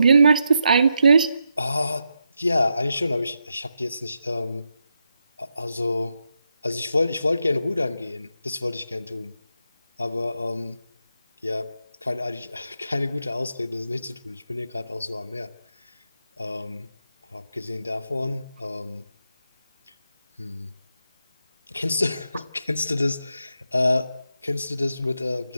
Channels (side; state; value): both; inverted; correlation -0.85